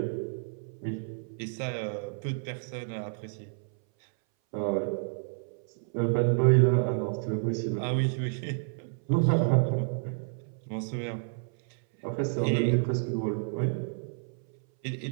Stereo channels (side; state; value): left; silent; 58 dB below the other